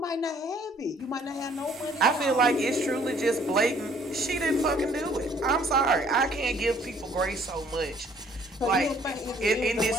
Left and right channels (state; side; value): normal; both; correlation 0.60